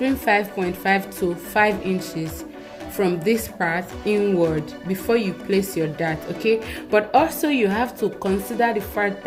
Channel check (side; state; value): both; identical; correlation 1.00